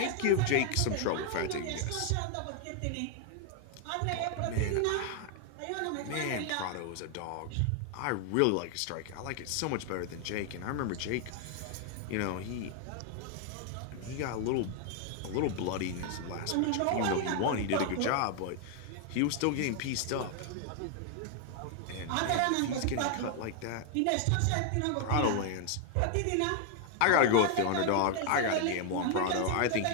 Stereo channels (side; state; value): both; different; correlation 0.00